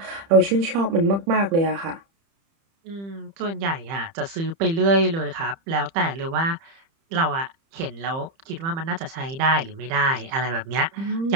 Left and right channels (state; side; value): late; left; 30 ms